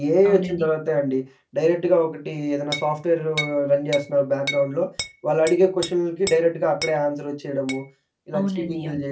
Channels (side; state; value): both; identical; correlation 1.00